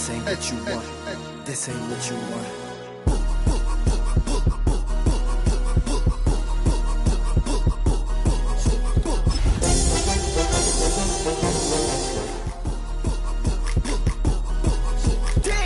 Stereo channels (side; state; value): both; identical; correlation 1.00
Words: ain't what you want. This ain't what you want.